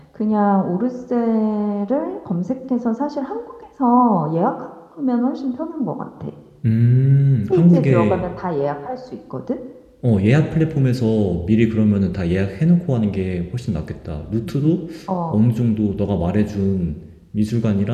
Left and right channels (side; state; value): both; identical; correlation 1.00